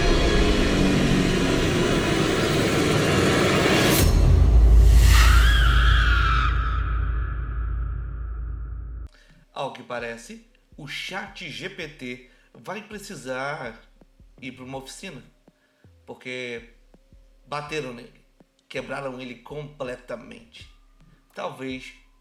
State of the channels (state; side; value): identical; both; correlation 1.00